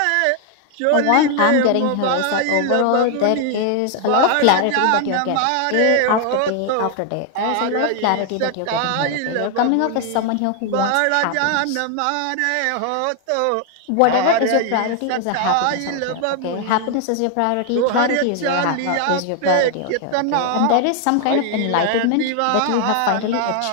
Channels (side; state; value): both; different; correlation 0.00